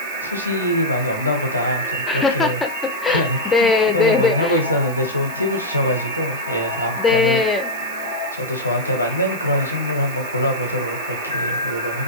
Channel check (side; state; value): right; noise; hiss, 18 dB below the sound